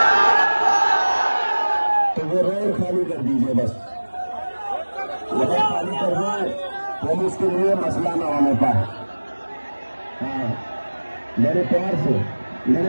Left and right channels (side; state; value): both; inverted; correlation -1.00